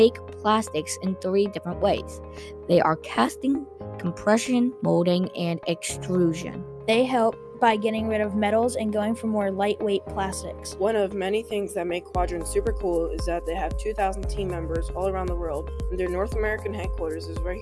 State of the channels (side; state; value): both; identical; correlation 1.00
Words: plastics in 3 different ways. They are casting, compression, molding, and extrusion. They help by getting rid of metals and going for more lightweight plastics. One of many things that make Quadrant super cool is that they have 2,000 team members all around the world, and their North American headquarters is right